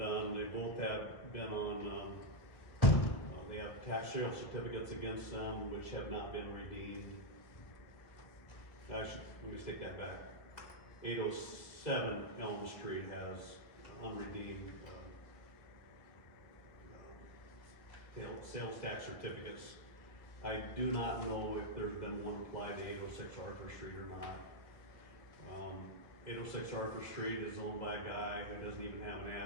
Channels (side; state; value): right; late; 1.6 ms